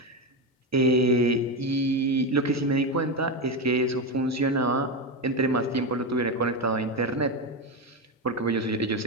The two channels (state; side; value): normal; both; correlation 0.12